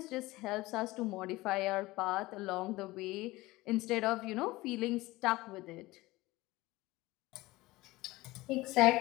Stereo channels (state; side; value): quieter; right; 19.7 dB